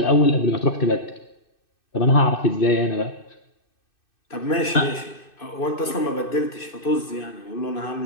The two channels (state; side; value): late; right; 2.6 ms